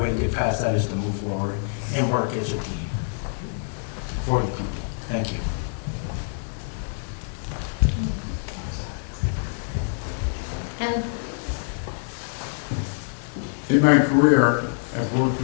to get past that is to move forward and work as a team for the people. Thank you. Kevin? In my career, I've worked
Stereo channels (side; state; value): right; silent; digital silence